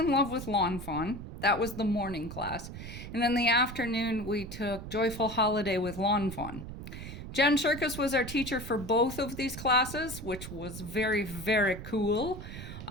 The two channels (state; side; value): noise; right; rumble, 10 dB below the sound